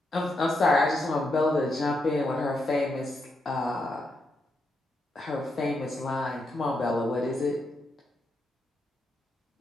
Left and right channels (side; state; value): both; normal; correlation 0.82